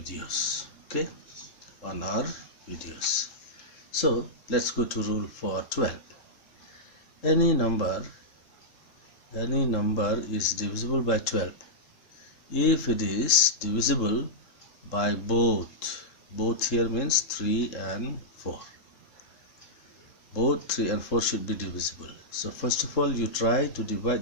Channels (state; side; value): late; right; 3.7 ms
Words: Okay, on our videos. So let's go to rule for 12. Any number is divisible by 12 if it is divisible by both here means 3 and 4. Both 3 and 4 should be divisible. So first of all, you try to